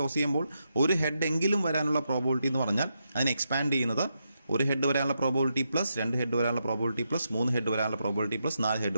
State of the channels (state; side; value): inverted; both; correlation -0.84